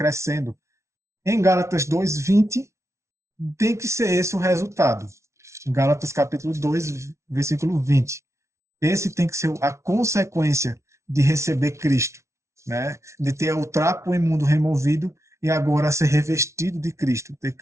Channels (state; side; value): late; left; 0.13 ms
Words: Em Gálatas 2:20 tem que ser esse o resultado. Gálatas capítulo 2, versículo 20. Esse tem que ser a consequência de receber Cristo, né? De ter o trapo imundo removido e agora ser revestido de Cristo, ter